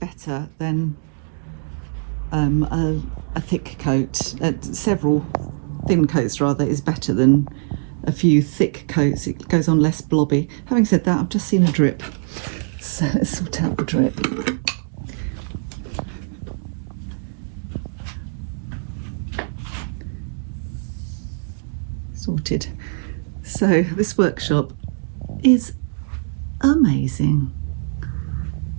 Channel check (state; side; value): silent; left; digital silence